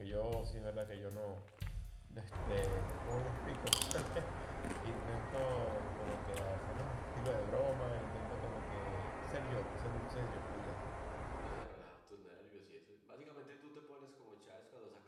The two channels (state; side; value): identical; both; correlation 1.00